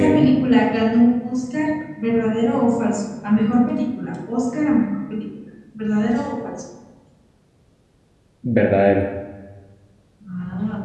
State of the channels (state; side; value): identical; both; correlation 1.00